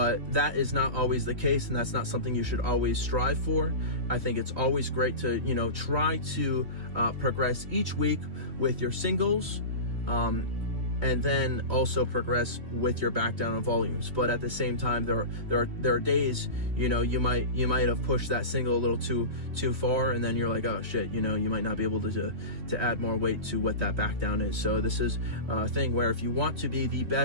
that is not always the case, and that's not something you should always strive for. I think it's always great to, try to progress each week with your singles, and then also progress with your back down on volumes. But at the same time, there are days, you might have pushed that single a little too far, and then you're like, oh shit, you might not be able to add more weight to what that back down is. So this is a thing where if you want to be the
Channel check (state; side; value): late; left; 3.1 ms